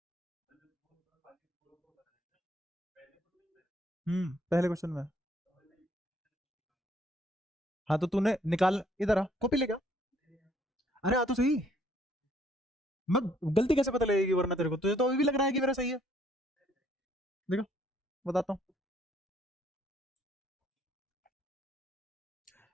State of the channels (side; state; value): both; normal; correlation 0.65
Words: पहले क्वेश्चन में। हाँ तो तूने निकाल, इधर आ, कॉपी लेके आ। अरे आ तो सही। मैं गलती कैसे पता लगेगी वरना तेरे को, तुझे तो अभी भी लग रहा है कि मेरा सही है। देखो, बताता हूँ।